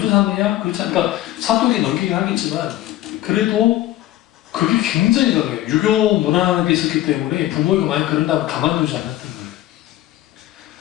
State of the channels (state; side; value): quieter; right; 14.5 dB